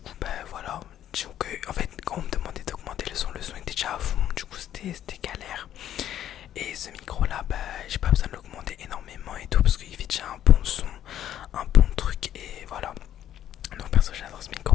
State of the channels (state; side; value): quieter; right; 11.2 dB